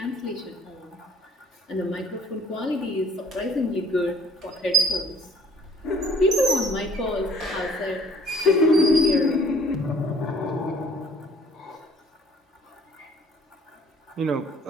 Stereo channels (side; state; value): both; normal; correlation 0.55